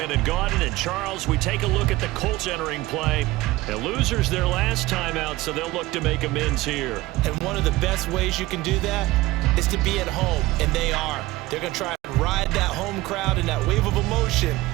Gaudin, and Charles, we take a look at the Colts entering play. The losers their last time out, so they'll look to make amends here. And one of the best ways you can do that is to be at home, and they are. They're going to try and ride that home crowd and that wave of emotion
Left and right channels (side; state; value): left; quieter; 18.7 dB